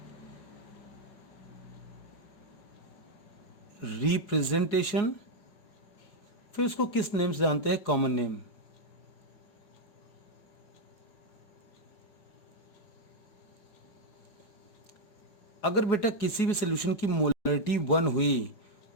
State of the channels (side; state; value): right; late; 4.8 ms